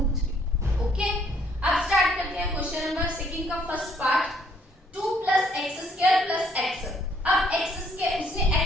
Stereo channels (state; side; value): normal; both; correlation 0.65